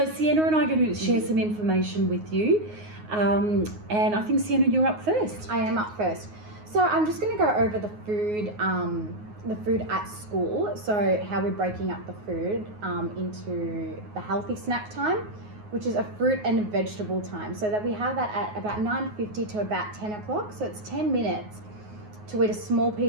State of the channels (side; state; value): left; late; 9.5 ms